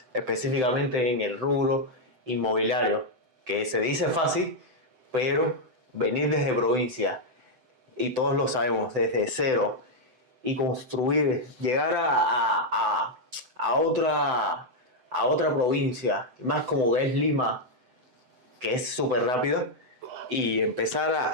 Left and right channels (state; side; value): late; left; 7.8 ms